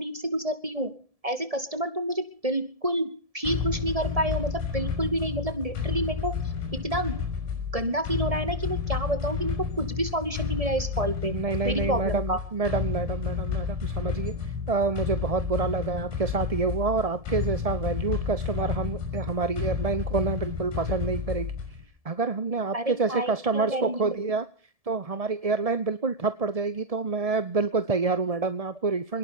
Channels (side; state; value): left; late; 1.7 ms